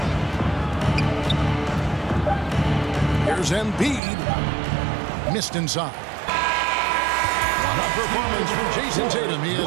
Here's Embiid. Missed inside. What a performance from Jason Tatum. He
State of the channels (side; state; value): left; drops out; at 4.0 s